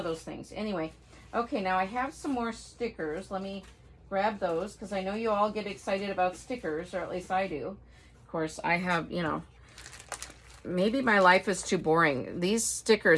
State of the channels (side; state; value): both; identical; correlation 1.00